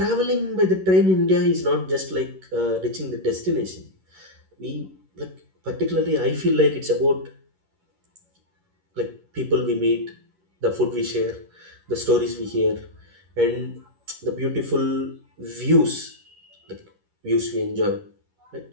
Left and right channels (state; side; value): late; left; 11 ms